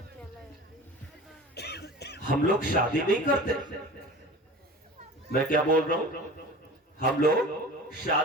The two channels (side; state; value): both; normal; correlation 0.37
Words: हम लोग शादी नहीं करते। मैं क्या बोल रहा हूं? हम लोग